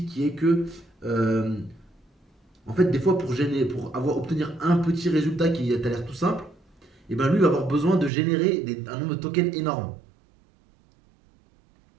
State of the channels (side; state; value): left; drops out; at 8.1 s